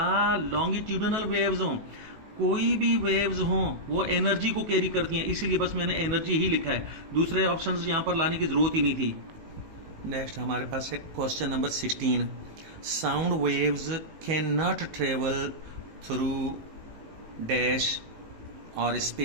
लॉन्गिट्यूडनल वेव्स हों, कोई भी वेव्स हों वो एनर्जी को कैरी करती हैं। इसलिए बस मैंने एनर्जी ही लिखा है, दूसरे ऑप्शंस यहां पर लाने की जरूरत ही नहीं थी। नेक्स्ट हमारे पास है question number 16, sound waves can not travel through dash और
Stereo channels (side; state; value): left; late; 18 ms